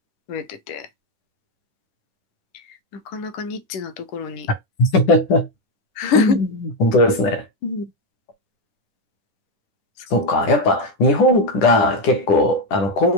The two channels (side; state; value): right; late; 10 ms